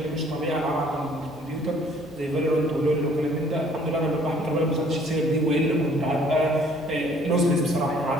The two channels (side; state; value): both; normal; correlation 0.58